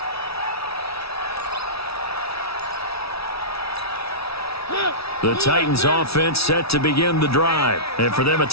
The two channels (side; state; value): right; late; 0.77 ms